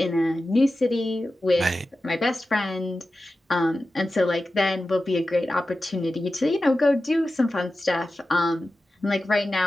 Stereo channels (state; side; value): normal; both; correlation 0.93